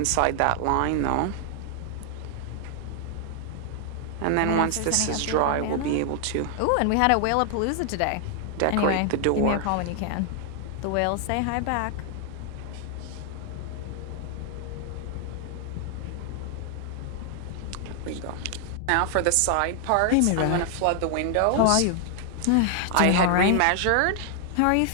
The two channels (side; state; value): both; different; correlation 0.00